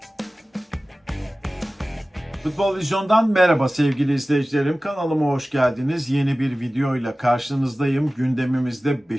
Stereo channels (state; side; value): normal; both; correlation 0.96